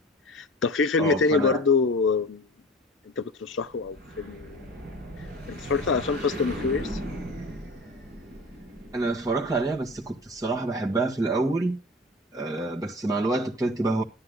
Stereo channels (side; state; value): both; normal; correlation 0.37